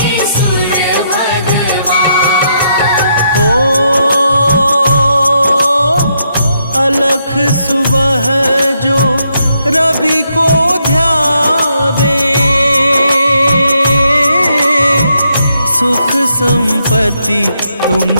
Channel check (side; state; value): both; inverted; correlation -0.78